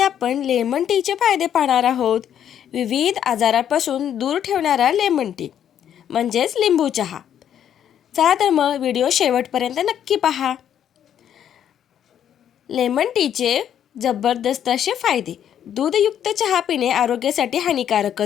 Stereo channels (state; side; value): quieter; right; 9.7 dB